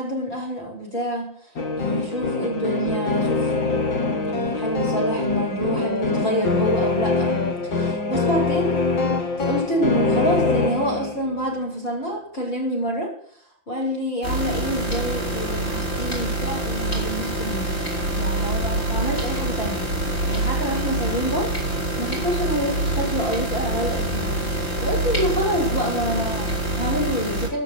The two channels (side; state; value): right; late; 5.8 ms